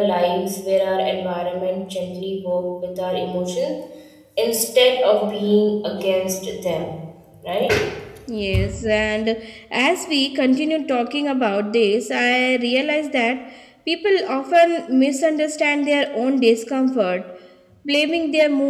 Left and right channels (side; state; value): both; identical; correlation 1.00